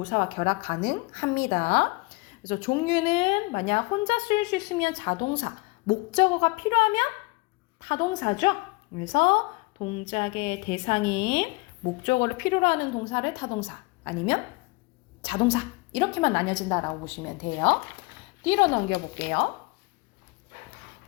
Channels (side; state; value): right; quieter; 25.3 dB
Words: 결합 가능합니다. 그래서 종류는 만약 혼자 쓸 수 있으면 자동사, 목적어가 필요하면 타동사죠. 그래서 동작의 대상인 목적어를 필요로 하는 동사를 타동사 아니면 자동사 이렇게만 나뉘어진다라고 보시면 돼요. 뒤로 넘겨볼게요.